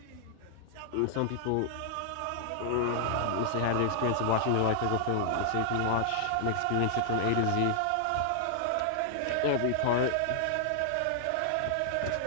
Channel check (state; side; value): different; both; correlation -0.01